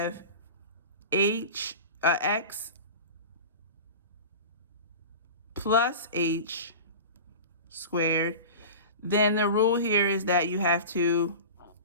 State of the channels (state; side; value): inverted; both; correlation -0.33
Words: x plus h squared, then the rule here is that you have to